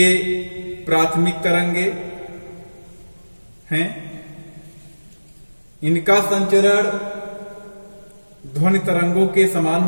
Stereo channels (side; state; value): both; inverted; correlation -1.00